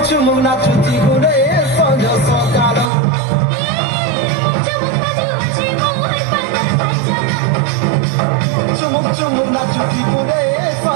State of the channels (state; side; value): drops out; left; at 2.9 s